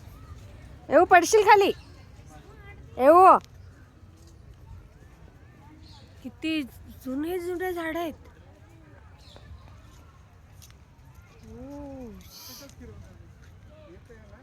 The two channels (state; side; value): identical; both; correlation 1.00